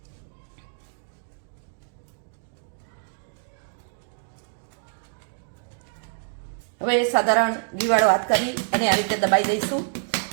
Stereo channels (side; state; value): left; silent; digital silence